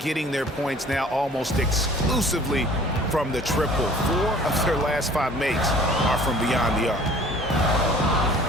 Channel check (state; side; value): normal; both; correlation 0.50